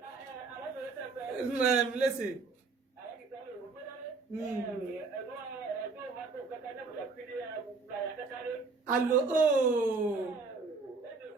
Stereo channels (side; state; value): left; quieter; 4.2 dB